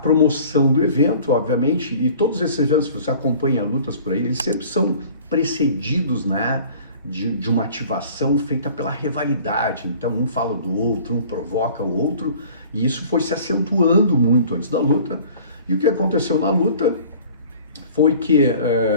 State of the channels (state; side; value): inverted; both; correlation -0.48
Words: do evento, obviamente, e todos esses eventos, se você acompanha lutas por aí, eles sempre são precedidos, né, de uma ativação feita pela rivalidade. Então um fala do outro, um provoca o outro, e isso foi se acentuando muito antes da luta. E o que aconteceu na luta foi que